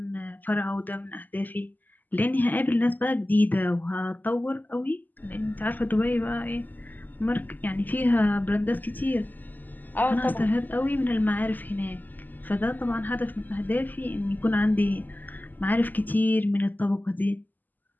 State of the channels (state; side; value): late; right; 0.085 ms